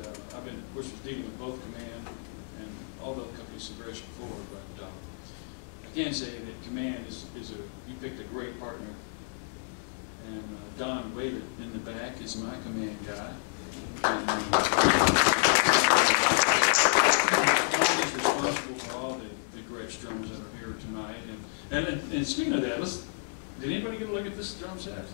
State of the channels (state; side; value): silent; right; digital silence